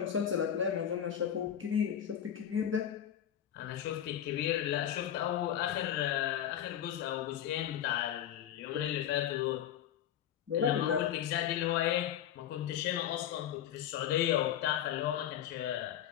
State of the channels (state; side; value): quieter; right; 10.3 dB